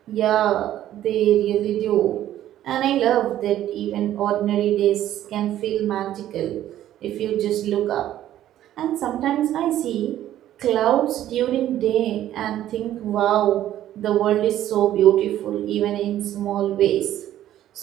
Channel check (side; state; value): left; quieter; 12.5 dB